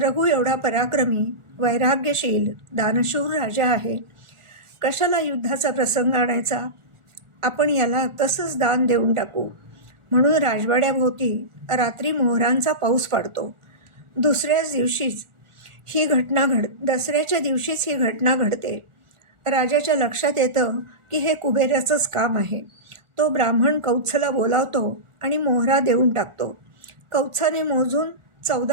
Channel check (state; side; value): late; left; 1.4 ms